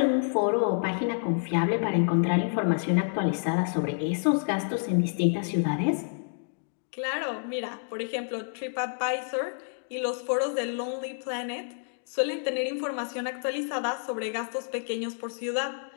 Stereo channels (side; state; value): right; silent; digital silence